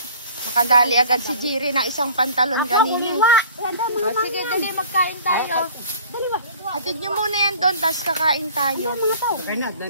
Nakadali agad si Jiri ng isang pantalon kanina. O, sige, dali, magkain tayo. Hatid nyo muna yan doon, tapos kakain tayo. Kuha.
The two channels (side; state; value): both; inverted; correlation -0.48